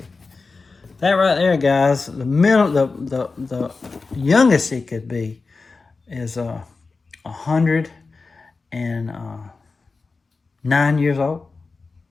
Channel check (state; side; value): quieter; right; 4.1 dB